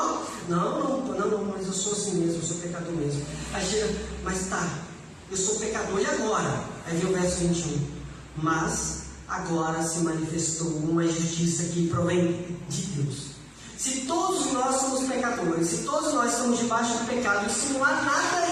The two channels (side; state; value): both; identical; correlation 1.00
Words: Não, mas eu sou assim mesmo, eu sou pecador mesmo. Aí chega, mas tá, eu sou pecador, e agora? Aí vem o verso 21. Mas agora se manifestou uma justiça que provém de Deus. Se todos nós somos pecadores, se todos nós estamos debaixo do pecado, e se não há nada